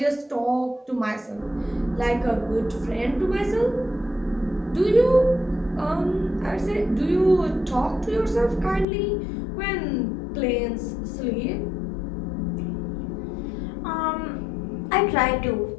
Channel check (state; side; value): drops out; right; at 8.8 s